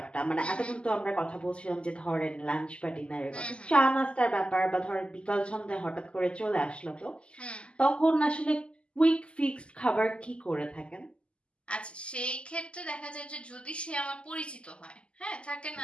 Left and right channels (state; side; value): late; right; 0.054 ms